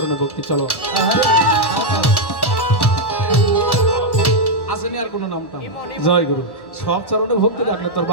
ভক্তি। চলো আসেনি আর কোনো নামটা? জয় গুরু। সব চরণে ভক্তি রাখলে তোর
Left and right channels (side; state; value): right; late; 1.1 ms